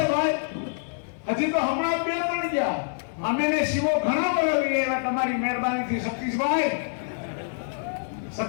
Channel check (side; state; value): right; silent; 61 dB below the other